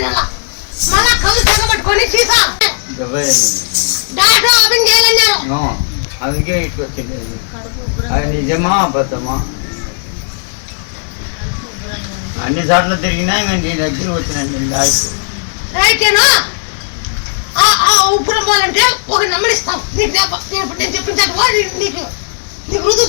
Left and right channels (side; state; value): right; silent; digital silence